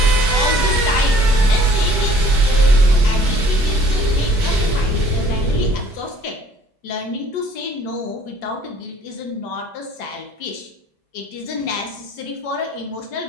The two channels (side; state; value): both; normal; correlation 0.56